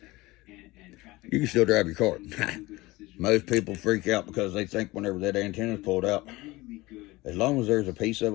you can still drive your car. Most people freak out because they think whenever that antenna is pulled out, as long as there's a piece of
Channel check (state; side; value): quieter; right; 20.5 dB